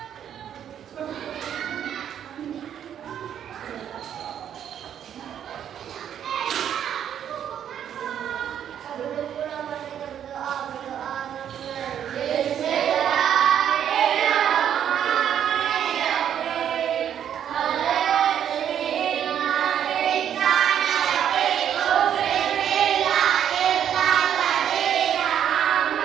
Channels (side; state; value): left; quieter; 9.5 dB